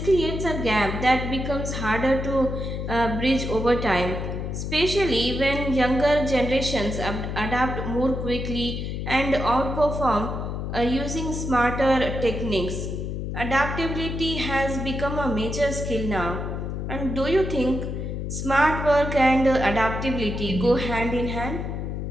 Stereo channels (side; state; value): left; noise; hum, 4 dB below the sound